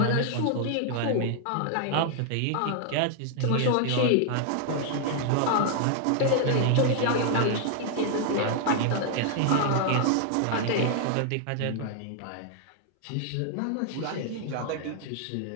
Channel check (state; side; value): different; both; correlation 0.00